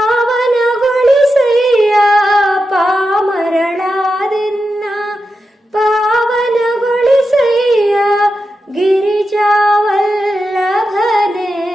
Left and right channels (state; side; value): normal; both; correlation 0.89